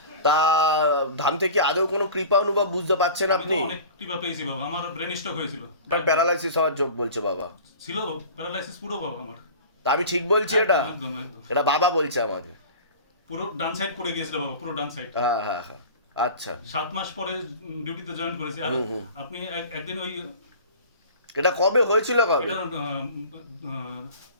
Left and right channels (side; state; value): both; inverted; correlation -0.38